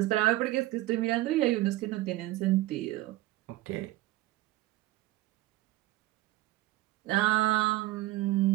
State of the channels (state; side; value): quieter; left; 17.5 dB